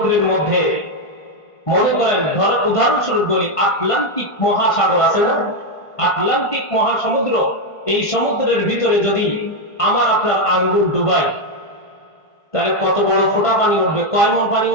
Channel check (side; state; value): right; late; 1.5 ms